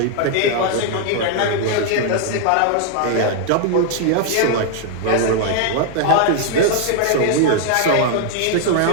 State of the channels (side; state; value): both; different; correlation 0.00